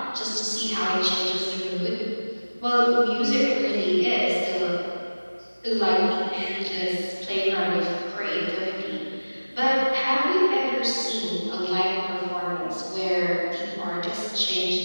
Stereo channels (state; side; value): inverted; both; correlation -1.00